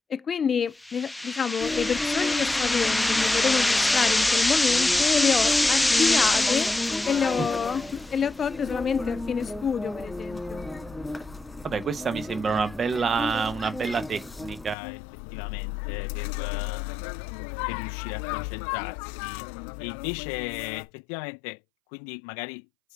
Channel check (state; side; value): drops out; right; at 14.8 s